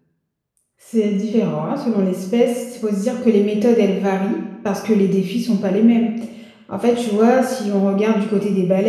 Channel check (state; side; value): identical; both; correlation 1.00